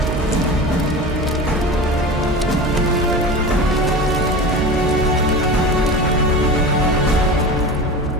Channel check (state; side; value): normal; both; correlation 0.31